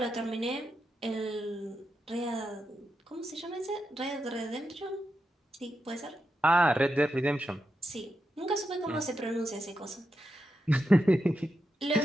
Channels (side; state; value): both; normal; correlation 0.87